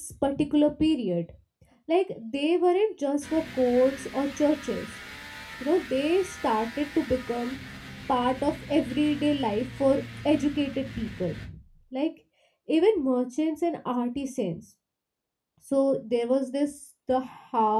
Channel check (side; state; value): both; identical; correlation 1.00